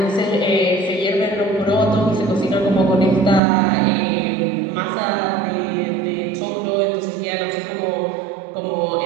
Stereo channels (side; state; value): left; drops out; at 3.4 s